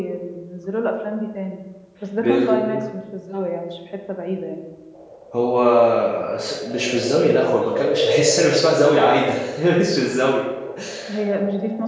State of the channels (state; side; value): identical; both; correlation 1.00